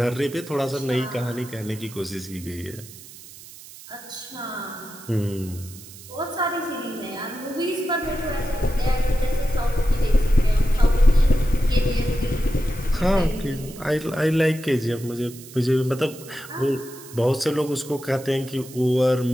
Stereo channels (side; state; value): right; noise; hiss, 18 dB below the sound